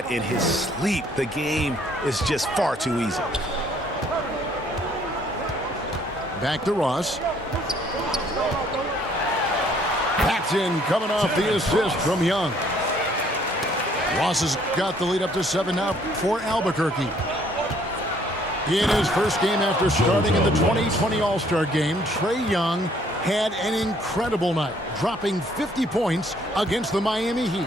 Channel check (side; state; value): both; normal; correlation 0.63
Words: in his sleep. The game is just far too easy. Back to Ross. Paxton coming off the assist from Young. Ross has got the lead up to 7 now for Albuquerque. In his first game after starting in the 2020 All-Star game, Trae Young had an incredible night, dropping 50 points against the Miami